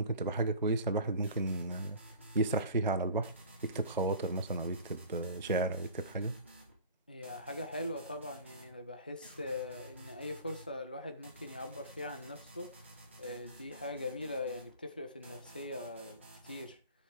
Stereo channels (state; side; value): inverted; both; correlation -0.42